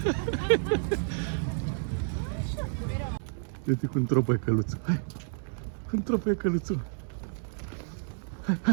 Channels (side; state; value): left; silent; 58 dB below the other